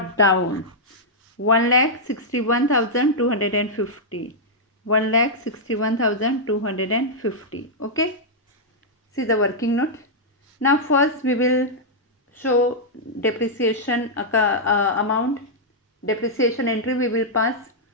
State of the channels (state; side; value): normal; both; correlation -0.07